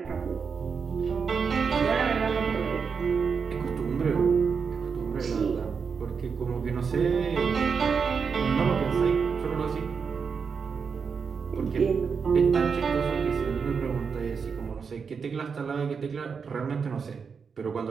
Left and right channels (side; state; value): left; quieter; 5.8 dB